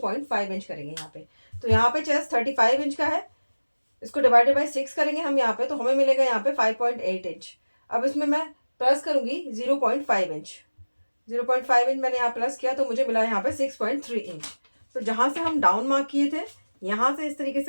inch करेंगे यहाँ पे। तो यहाँ पे चेस्ट 35 इंच का है, इसको डिवाइडेड बाई 6 करेंगे हम यहाँ पे, तो हमें मिलेगा यहाँ पे 5.8 इंच। अब इसमें मैं प्लस करूंगी 0.5 इंच। 0.5 इंच मैंने यहाँ प्लस किया, तो मुझे मिला यहाँ पे 6.3 इंच। तो जहां से हम डाउन मार्क किए थे, यहाँ से इस तरीके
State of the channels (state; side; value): inverted; both; correlation -1.00